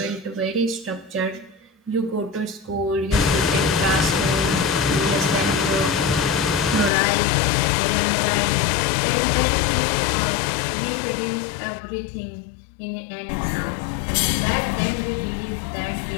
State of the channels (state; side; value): drops out; right; at 6.9 s